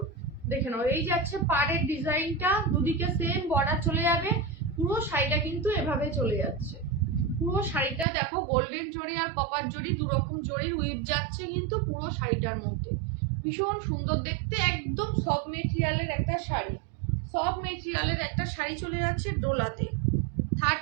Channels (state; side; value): drops out; left; at 8.1 s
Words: দেখে নাও, এই যাচ্ছে পাড়ের ডিজাইনটা, দুদিকে সেম বর্ডার চলে যাবে। পুরো শাড়িটা কিন্তু এভাবে চলে যাচ্ছে। পুরো শাড়িটা দেখো, গোল্ডেন জরি আর কপার জরি দু রকম জরির উইভ যাচ্ছে কিন্তু পুরো শাড়িটার মধ্যে। ভীষণ সুন্দর দেখতে, একদম সফট মেটেরিয়ালের একটা শাড়ি। সফট মেটেরিয়ালের একটা শাড়ি চলে যাচ্ছে ডোলাতে।